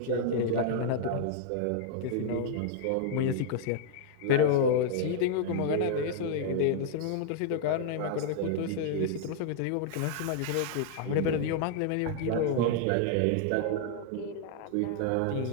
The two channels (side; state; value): both; different; correlation -0.01